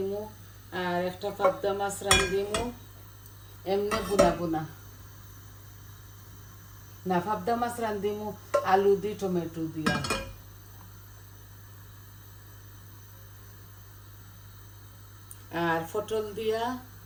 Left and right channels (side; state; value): both; identical; correlation 1.00